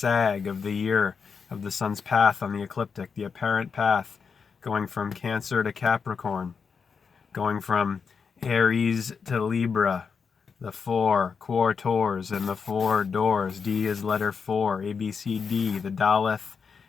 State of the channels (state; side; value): quieter; right; 5.8 dB